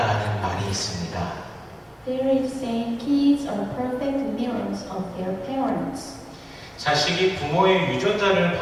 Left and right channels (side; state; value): both; identical; correlation 1.00